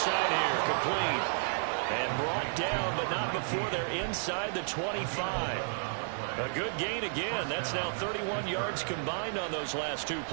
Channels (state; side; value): silent; left; digital silence